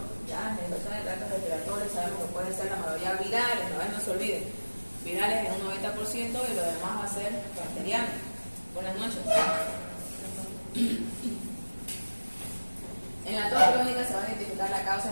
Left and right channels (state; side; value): inverted; both; correlation -1.00